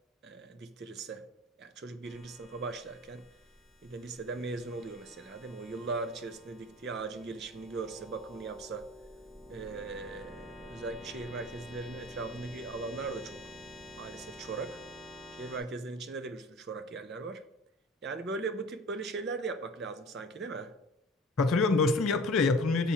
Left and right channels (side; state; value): both; normal; correlation 0.43